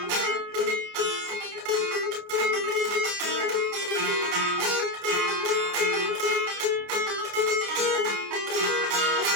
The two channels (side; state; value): left; late; 29 ms